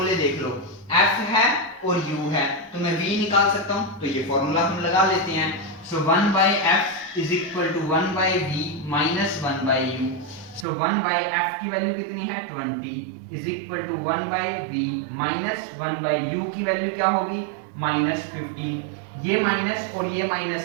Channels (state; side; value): drops out; left; at 10.7 s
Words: देख लो, f है और u है तो मैं v निकाल सकता हूं, तो ये फॉर्मूला हम लगा लेते हैं। So 1/f is equal to 1/v minus 1/u। So 1/f की वैल्यू कितनी है 20 is equal to 1/v minus 1/u की वैल्यू क्या होगी -15। ये माइनस और ये